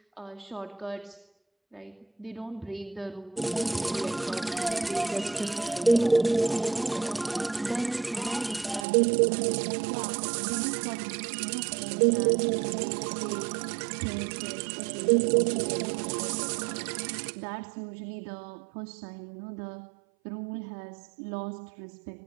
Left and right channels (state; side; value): drops out; left; at 8.8 s